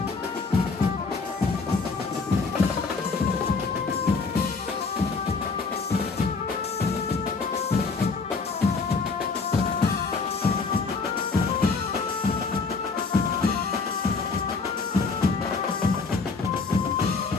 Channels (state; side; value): quieter; right; 4.4 dB